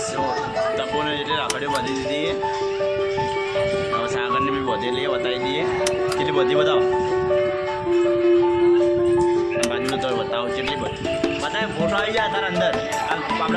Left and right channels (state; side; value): identical; both; correlation 1.00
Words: જો તપોને એટલે રાખડીઓ બાંધી દીધી હવે સાગરને બી બધી લઈએ બતાવી દઈએ કેટલી બધી બતાવો બાજુનો તો બતાવો કેટલી બધી બતાવે ફોટો આવી જાય તારા અંદર